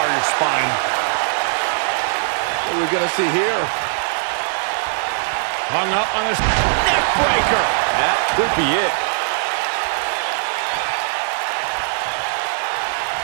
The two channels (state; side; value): silent; left; 66 dB below the other